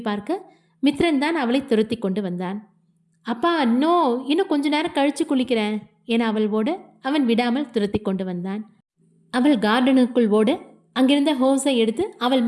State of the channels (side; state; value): both; identical; correlation 1.00